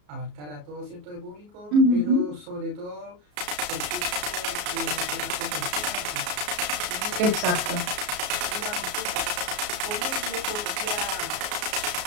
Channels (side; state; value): left; late; 33 ms